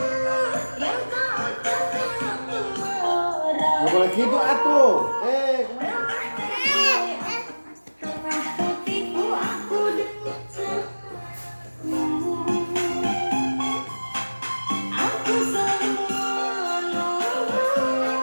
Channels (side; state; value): both; inverted; correlation -1.00